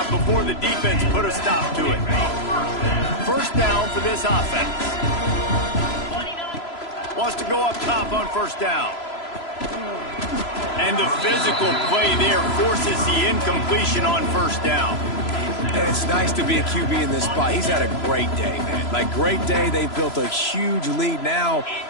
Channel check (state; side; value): late; right; 3.0 ms